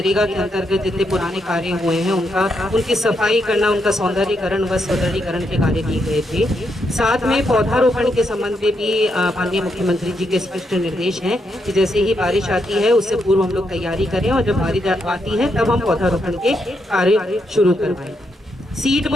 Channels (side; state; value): both; normal; correlation 0.80